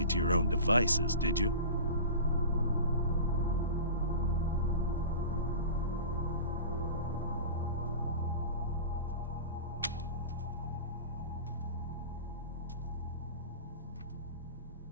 to your own devices, did you?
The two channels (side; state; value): both; inverted; correlation -0.35